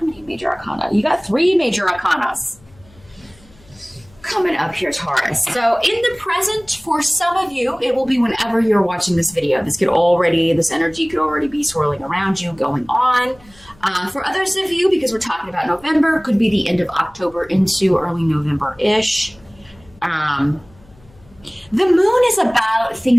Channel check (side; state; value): left; noise; hum, 28 dB below the sound